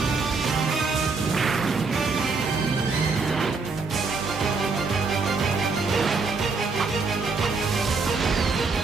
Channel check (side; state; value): left; quieter; 4.3 dB